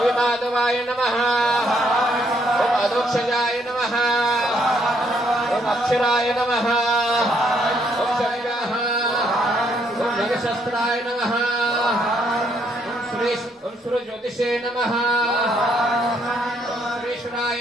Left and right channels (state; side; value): normal; both; correlation 0.71